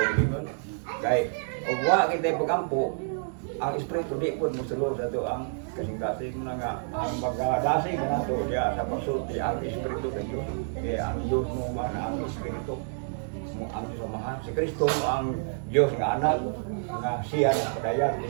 kay og wa kita pag-ampo ang espiritu di pud mosulod dato ang kasing-kasing na nga ang magdasig na to diya sa pagsulti ang espiritu sa Dios kaya ang Dios mo man ang espiritu mo ang samahan si Kristo mo ang Dios nga anak nga siya na padayan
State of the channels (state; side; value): silent; left; digital silence